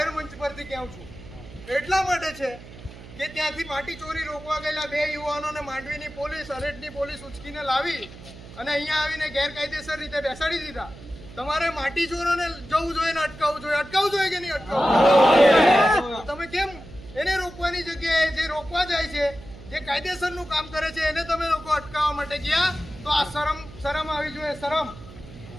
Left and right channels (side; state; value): right; noise; hum, 17 dB below the sound